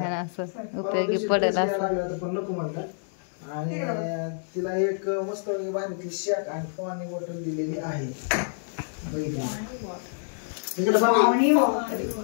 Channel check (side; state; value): right; silent; digital silence